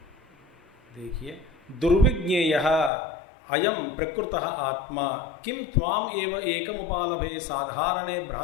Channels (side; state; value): right; drops out; at 2.9 s